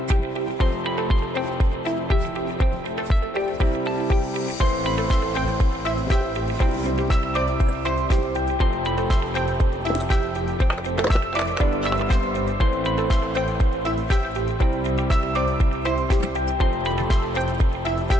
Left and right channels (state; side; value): normal; both; correlation 0.75